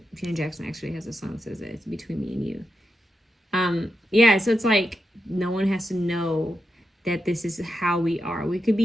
Janet Jackson actually has a song that says that it's between me and you. Yeah, so it's like no one has to know that this is how we are. We could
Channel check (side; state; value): both; normal; correlation 0.86